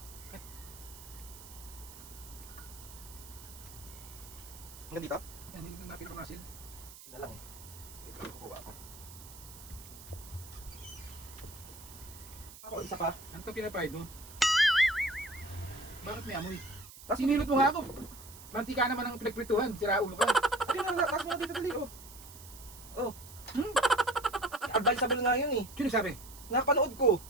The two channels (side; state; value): right; noise; hiss, 17 dB below the sound